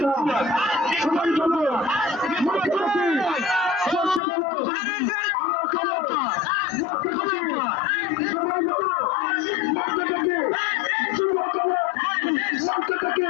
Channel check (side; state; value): right; drops out; at 4.2 s